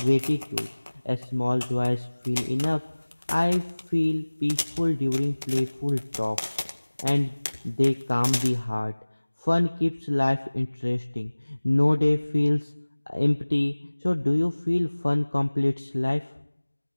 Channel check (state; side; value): inverted; both; correlation -1.00